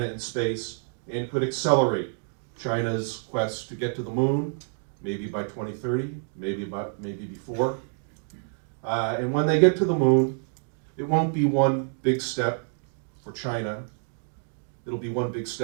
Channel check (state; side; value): silent; left; 60 dB below the other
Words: in space and could accelerate China's quest to get to the moon, maybe by 2030, maybe before. And when they get to the moon, it won't be one big step for China. It'll be one big